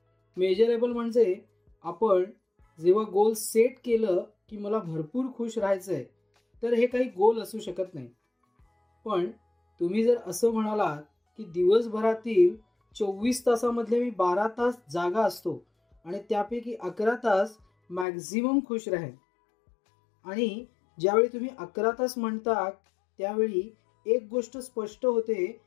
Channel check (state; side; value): drops out; right; at 18.1 s